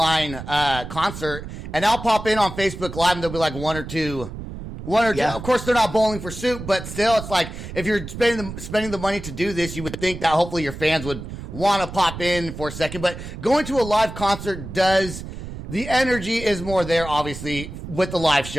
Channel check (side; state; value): right; noise; rumble, 10 dB below the sound